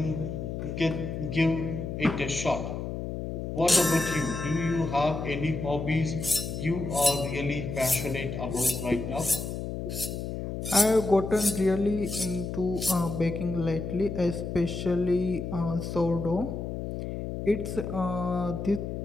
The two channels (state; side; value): noise; left; hum, 5 dB below the sound